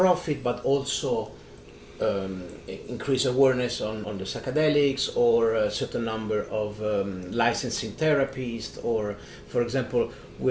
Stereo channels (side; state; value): both; identical; correlation 1.00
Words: but also increase awareness on the psychedelics, or a certain number of licensing therapies. Or, for example,